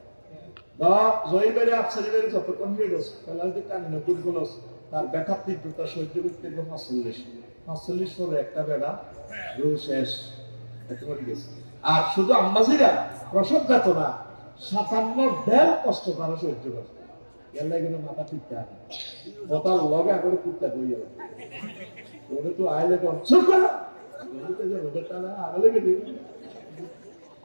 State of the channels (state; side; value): inverted; both; correlation -1.00